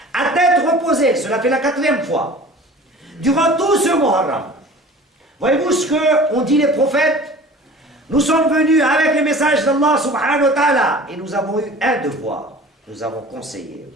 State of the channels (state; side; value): normal; both; correlation 0.43